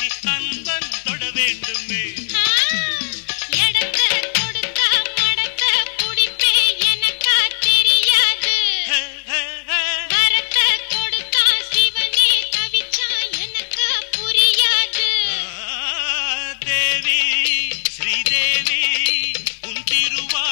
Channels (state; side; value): silent; right; digital silence